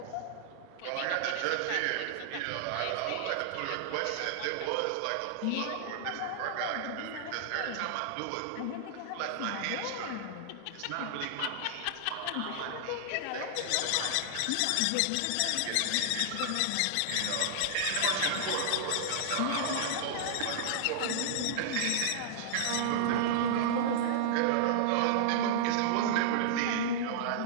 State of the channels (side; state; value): both; different; correlation -0.01